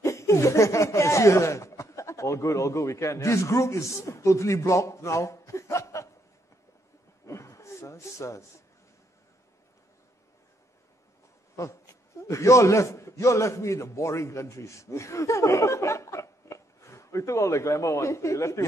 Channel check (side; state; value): right; late; 10 ms